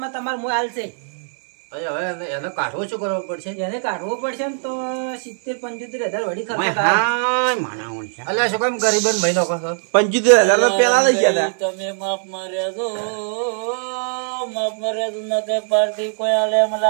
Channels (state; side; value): silent; left; digital silence